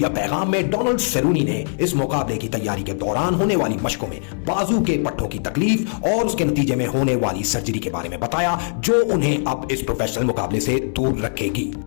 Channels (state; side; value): silent; right; digital silence